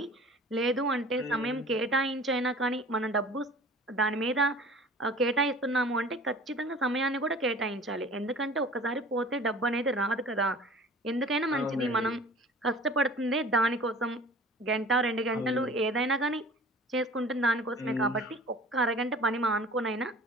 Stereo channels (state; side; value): normal; both; correlation 0.44